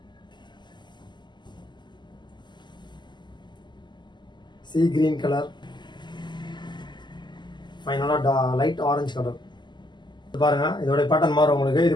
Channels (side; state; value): right; late; 0.21 ms